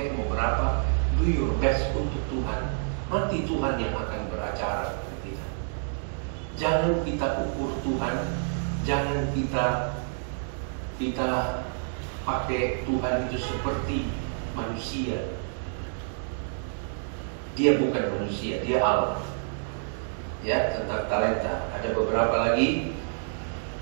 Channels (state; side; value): silent; left; digital silence